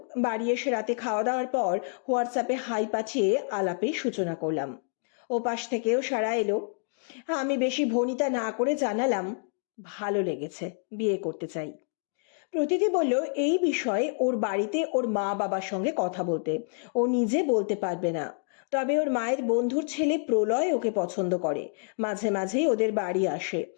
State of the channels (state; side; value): silent; right; 59 dB below the other